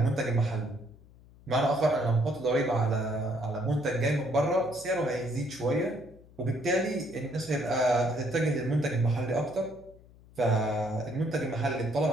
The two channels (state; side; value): noise; left; hum, 24 dB below the sound